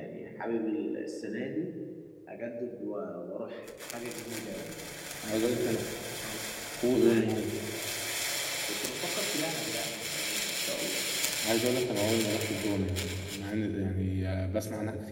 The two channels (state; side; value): identical; both; correlation 1.00